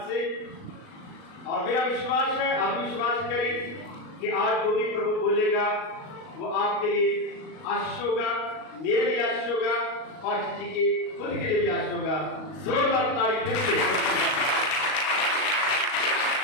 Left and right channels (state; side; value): late; right; 38 ms